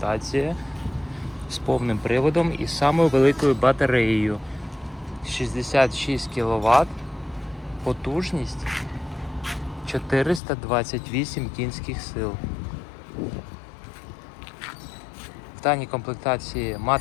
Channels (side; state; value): right; drops out; at 10.4 s